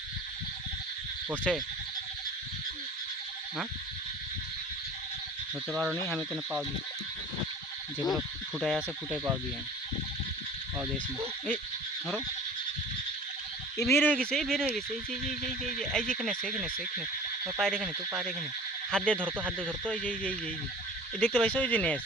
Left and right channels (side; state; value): both; normal; correlation 0.42